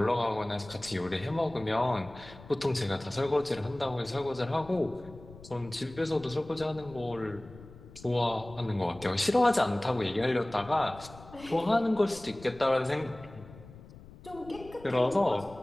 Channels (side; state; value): left; noise; rumble, 19 dB below the sound